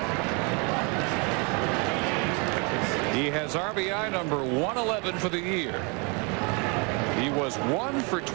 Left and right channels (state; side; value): quieter; left; 32.6 dB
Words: He has RBI number 111 for the year. He was 1 for